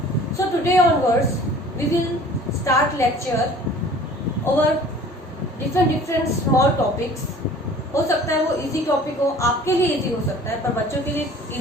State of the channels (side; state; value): both; normal; correlation 0.48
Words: So today onwards we will start lecture over different small topics. हो सकता है वो इजी टॉपिक हो, आपके लिए इजी हो सकता है, पर बच्चों के लिए